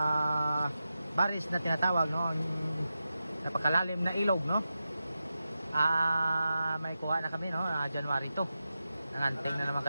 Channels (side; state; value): both; inverted; correlation -0.91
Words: baris na tinatawag, no? Napakalalim na ilog, no? May kuha na kami, no? January 2. Nanganting na naman